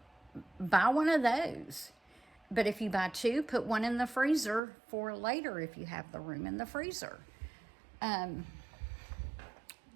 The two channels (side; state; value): left; drops out; at 4.6 s